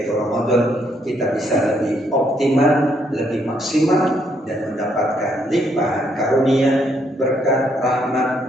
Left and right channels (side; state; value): both; normal; correlation 0.72